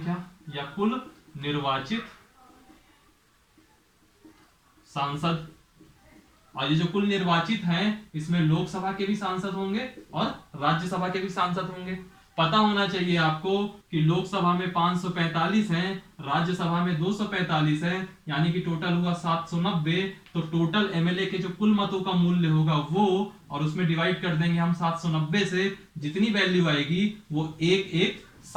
या कुल निर्वाचित सांसद। और ये जो कुल निर्वाचित हैं इसमें लोकसभा के भी सांसद होंगे और राज्यसभा के भी सांसद होंगे। पता होना चाहिए आपको कि लोकसभा में 545 हैं, राज्यसभा में 245 हैं, यानी कि टोटल हुआ 790। तो टोटल एमएलए के जो कुल मतों का मूल्य होगा वो, और उसमें डिवाइड कर देंगे हम 790 से, जितनी वैल्यू आएगी वो एक एक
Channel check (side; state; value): both; identical; correlation 1.00